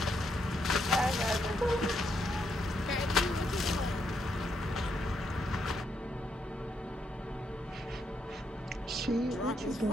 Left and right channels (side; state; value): both; normal; correlation 0.77